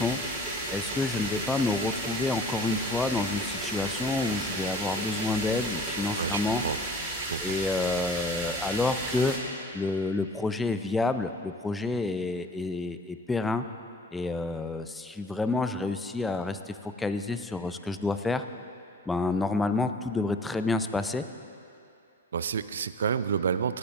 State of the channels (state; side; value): normal; both; correlation 0.47